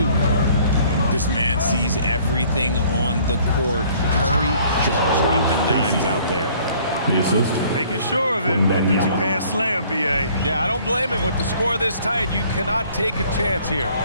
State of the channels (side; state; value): both; inverted; correlation -0.57